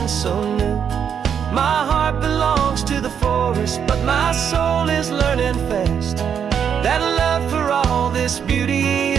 so new. My heart belongs to the forest, but my soul is learning fast that love for all this beauty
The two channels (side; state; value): left; quieter; 7.8 dB